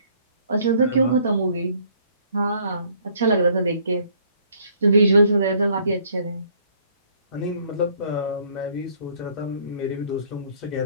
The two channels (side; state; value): both; inverted; correlation -0.61